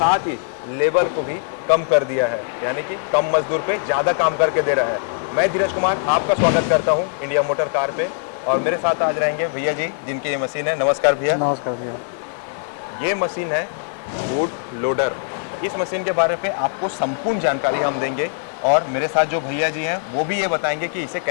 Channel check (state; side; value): silent; right; digital silence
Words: ही लेबर को भी कम कर दिया है, यानी कि कम मजदूर पे ज़्यादा काम करके दे रहा है। मैं धीरज कुमार आपका स्वागत करता हूँ इंडिया मोटर कार पे और मेरे साथ आज रहेंगे भैया जी जिनकी ये मशीन है। नमस्कार भैया। नमस्कार भैया। ये मशीन है वुड लोडर। इस मशीन के बारे में आपको संपूर्ण जानकारी हम देंगे और मेरे साथ जो भैया जी हैं वो भी ये बताएंगे कि इसे